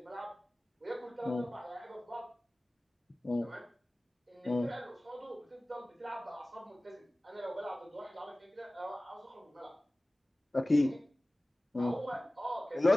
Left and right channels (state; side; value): normal; both; correlation 0.98